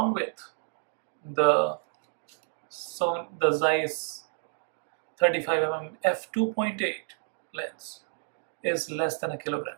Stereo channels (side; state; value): left; silent; 58 dB below the other